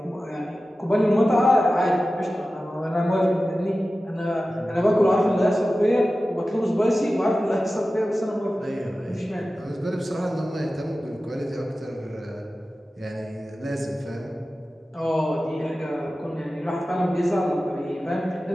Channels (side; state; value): both; normal; correlation 0.95